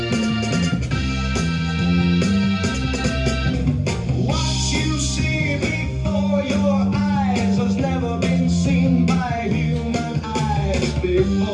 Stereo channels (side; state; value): both; identical; correlation 1.00